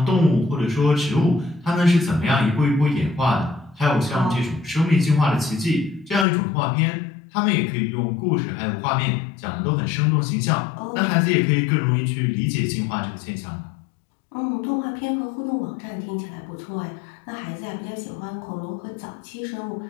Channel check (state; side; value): drops out; right; at 6.2 s